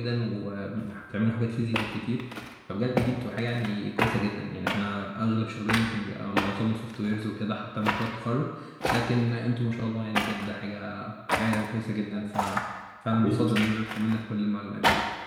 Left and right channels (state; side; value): identical; both; correlation 1.00